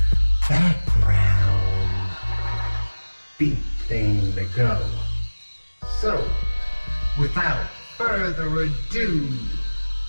background beat thing to go. So, without further ado,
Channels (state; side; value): inverted; both; correlation -1.00